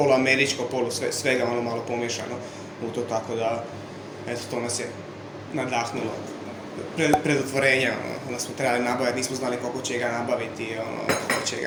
svega malo pomiješano u to, tako da, eto, to nas je nadahnulo. Pred otvorenja, onda smo trebali nabaviti, nismo znali koliko će ga nabaviti, koliko će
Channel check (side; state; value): both; identical; correlation 1.00